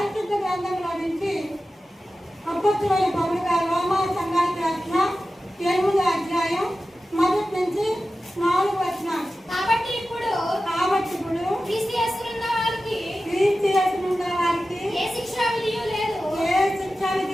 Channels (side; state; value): both; normal; correlation 0.94